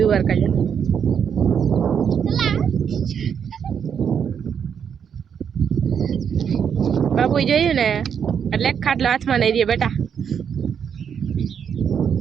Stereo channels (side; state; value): left; quieter; 7.6 dB